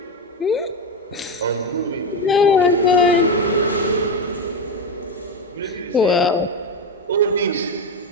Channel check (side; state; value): both; normal; correlation 0.12